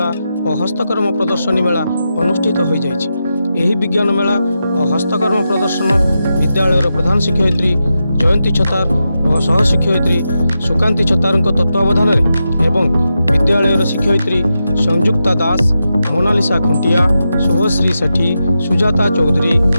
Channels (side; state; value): both; inverted; correlation -0.88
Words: और हस्तकर्म प्रदर्शनी मेला अनुष्ठित हो जाइछि। एही विज्ञान मेला और हस्तकर्म प्रदर्शन विद्यालय प्रधान शिक्षयित्री जयंती छतार और सहशिक्षयित्री सुकांती छतार तत्वावधान एवं विद्यालय शिक्षयित्री संयुक्ता दास, मोनालिसा खुंटिया, शुभश्री सेठी, सुजाता चौधरी,